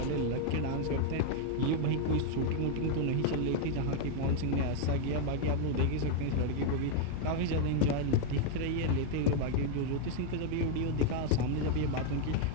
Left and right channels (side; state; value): both; different; correlation 0.00